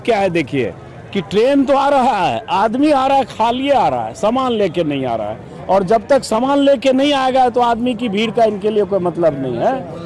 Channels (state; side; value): identical; both; correlation 1.00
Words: क्या है देखिए कि ट्रेन तो आ रहा है, आदमी आ रहा है, खाली आ रहा है, सामान लेके नहीं आ रहा है। और जब तक सामान लेके नहीं आएगा तो आदमी की भीड़ का इनके लिए कोई मतलब नहीं